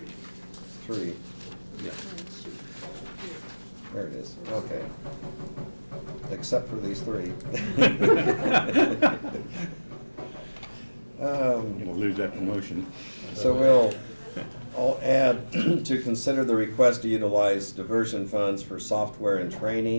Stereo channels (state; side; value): inverted; both; correlation -1.00